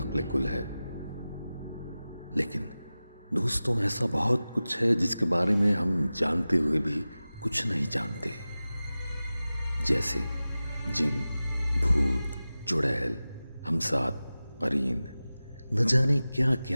کل ہے. لیکن دوستوں، ایسا بہت کچھ ہے جس کے بارے میں ہم جانتے ہوئے بھی کچھ نہیں جانتے، جیسے جن، بھوت، چڑیل، ہمسات، قرین، نہ جانے کیا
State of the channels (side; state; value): both; inverted; correlation -0.96